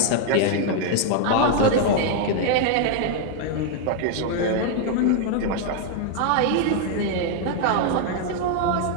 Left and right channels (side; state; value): both; different; correlation 0.00